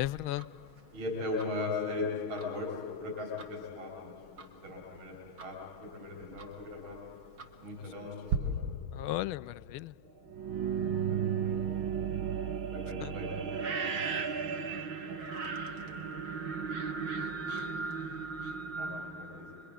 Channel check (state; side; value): late; left; 6.3 ms